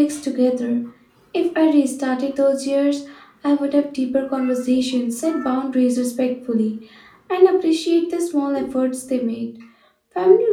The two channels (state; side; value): identical; both; correlation 1.00